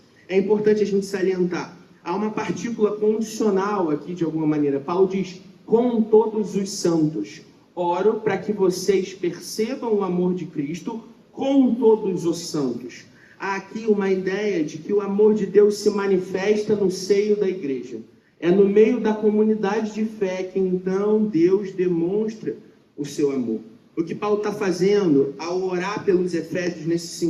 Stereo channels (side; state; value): both; identical; correlation 1.00